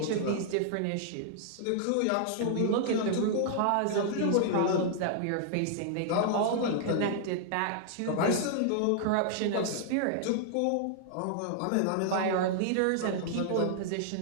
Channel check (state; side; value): different; both; correlation -0.01